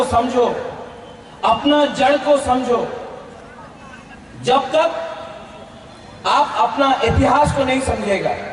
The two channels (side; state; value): both; identical; correlation 1.00